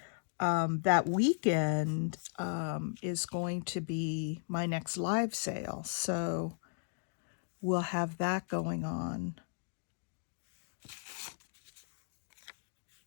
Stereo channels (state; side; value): silent; right; digital silence